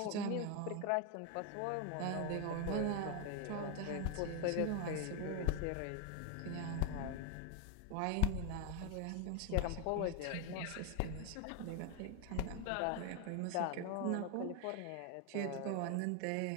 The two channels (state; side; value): different; both; correlation 0.01